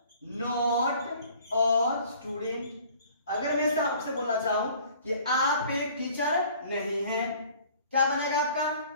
not a student. अगर मैं ऐसा आपसे बोलना चाहूं कि आप एक टीचर नहीं हैं, क्या बनेगा आपका,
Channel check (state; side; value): inverted; both; correlation -0.52